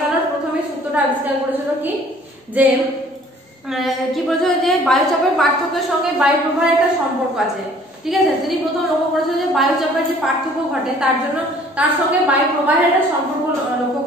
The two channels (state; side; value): normal; both; correlation 0.54